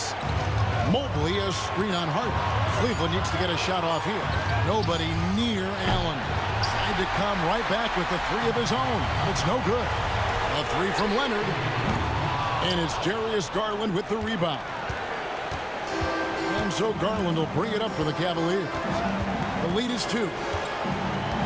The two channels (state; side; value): identical; both; correlation 1.00